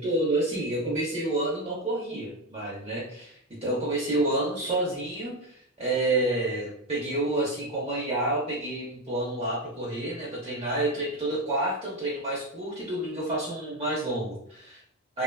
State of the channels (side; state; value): both; normal; correlation 0.13